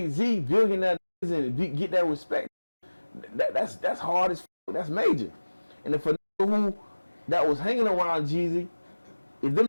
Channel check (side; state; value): both; inverted; correlation -1.00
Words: billionaire, and get that respect. That's hard as fuck. That's major. And if a nigga who that was hanging around Jeezy, if them